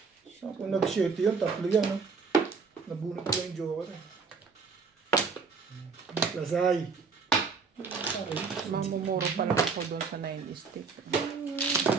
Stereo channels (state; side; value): quieter; left; 5.1 dB